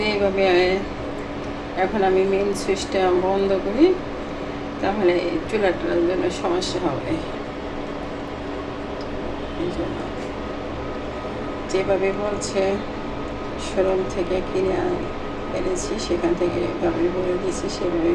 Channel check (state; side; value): identical; both; correlation 1.00